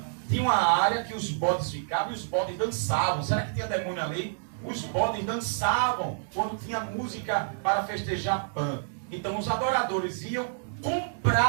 tinha uma área que os bodes ficavam e os bodes dançavam. Será que tinha demônio ali? Os bodes dançavam quando tinha música para festejar Pan. Então os adoradores iam,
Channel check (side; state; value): left; silent; digital silence